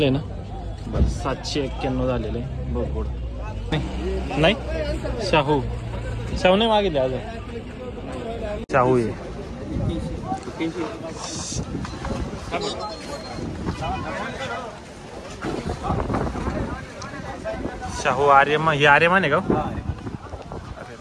ना? बरं. 791 झालेलं आहे. बरोबर. नाही शाहू नाही मागितले अजून. शाहू आहे. शाहू आर्यमान. ही आर्यमान आहे का?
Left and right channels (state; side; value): identical; both; correlation 1.00